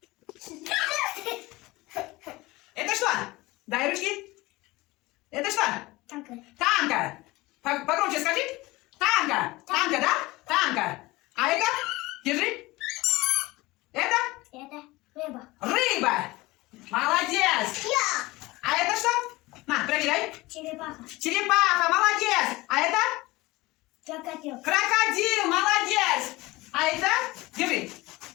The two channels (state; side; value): quieter; right; 20.7 dB